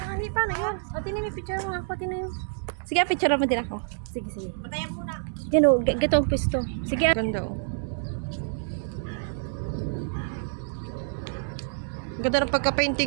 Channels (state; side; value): silent; left; digital silence